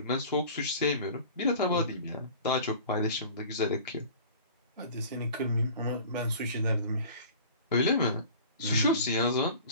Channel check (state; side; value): inverted; both; correlation -0.42